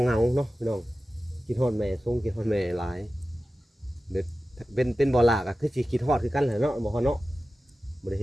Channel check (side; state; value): both; normal; correlation 0.95